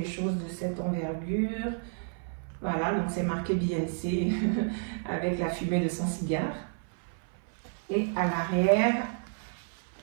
choses de cette envergure. Voilà, donc c'est marqué Beyoncé avec la fumée de son cigare. Et à l'arrière,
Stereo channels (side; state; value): left; silent; 57 dB below the other